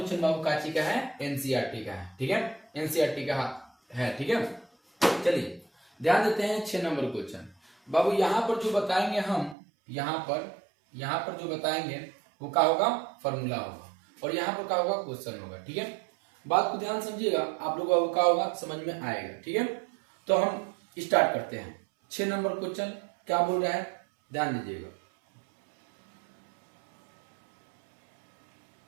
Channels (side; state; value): left; drops out; at 9.6 s